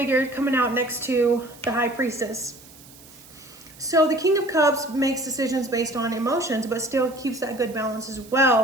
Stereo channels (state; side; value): noise; right; hiss, 22 dB below the sound